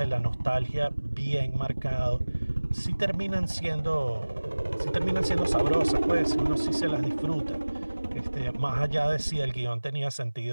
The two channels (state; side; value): inverted; both; correlation -1.00